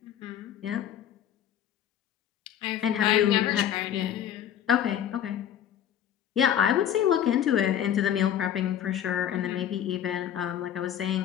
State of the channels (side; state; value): right; quieter; 10.2 dB